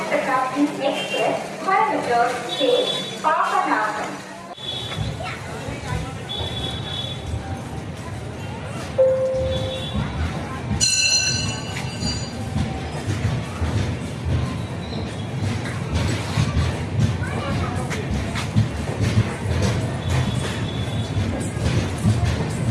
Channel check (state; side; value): identical; both; correlation 1.00